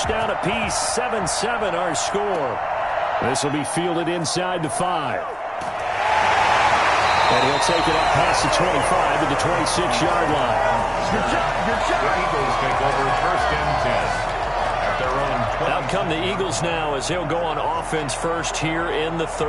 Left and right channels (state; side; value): identical; both; correlation 1.00